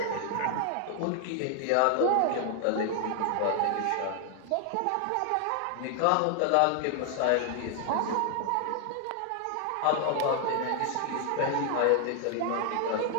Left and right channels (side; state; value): both; different; correlation 0.00